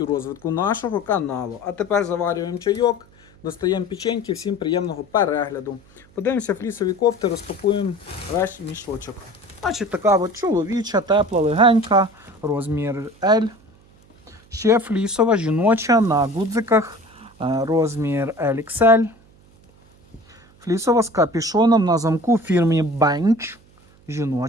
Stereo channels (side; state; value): right; noise; hum, 28 dB below the sound